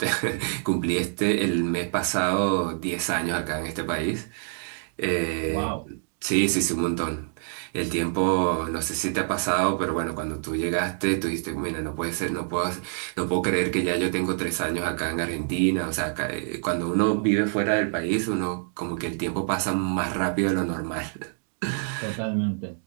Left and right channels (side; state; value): left; silent; digital silence